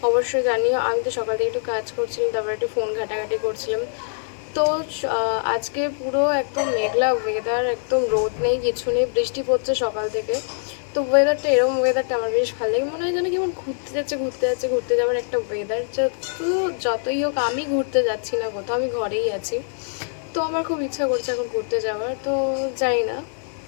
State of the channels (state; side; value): silent; right; digital silence